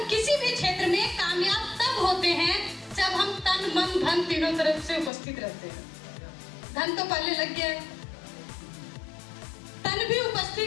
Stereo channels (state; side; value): drops out; right; at 5.1 s